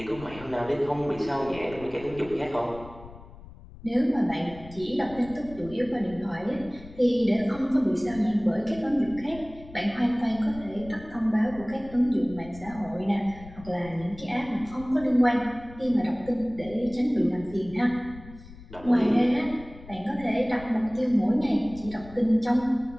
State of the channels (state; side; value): noise; left; rumble, 18 dB below the sound